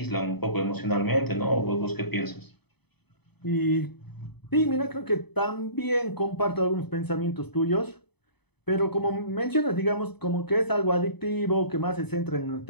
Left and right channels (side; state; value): right; late; 0.98 ms